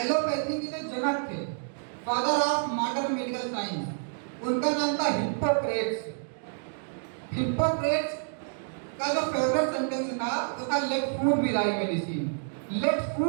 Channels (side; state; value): left; silent; digital silence